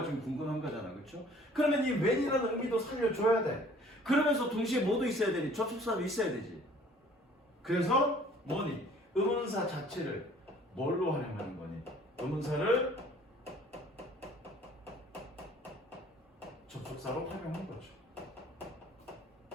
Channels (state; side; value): normal; both; correlation 0.54